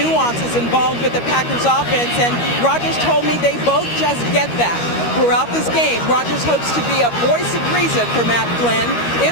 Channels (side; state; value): right; late; 13 ms